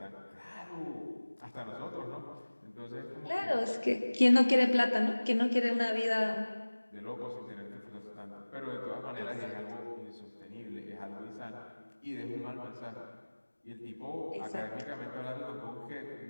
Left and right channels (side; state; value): both; inverted; correlation -1.00